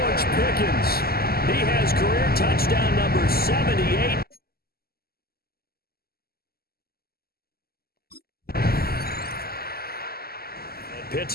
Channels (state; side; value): late; right; 0.45 ms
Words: Pickens. He has career touchdown number 78.